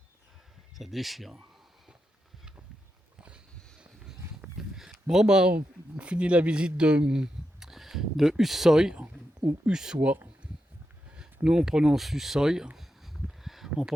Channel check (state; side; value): normal; both; correlation 0.87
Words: Ça déchire. Bon, bah, on finit la visite de Hussoy, ou Ussois. Nous, on prononce Hussoy, en